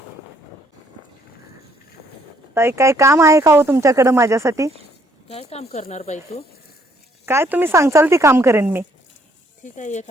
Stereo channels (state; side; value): normal; both; correlation 0.67